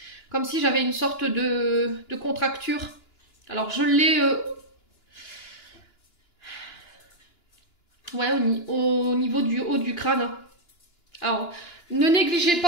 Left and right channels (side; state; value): right; late; 2.9 ms